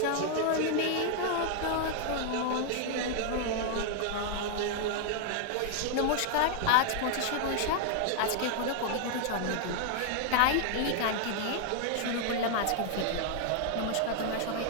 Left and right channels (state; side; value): different; both; correlation 0.00